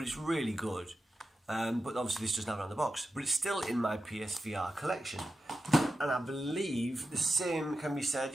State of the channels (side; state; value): both; normal; correlation 0.91